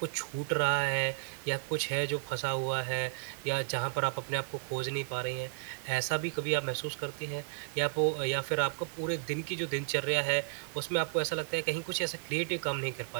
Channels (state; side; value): silent; left; 56 dB below the other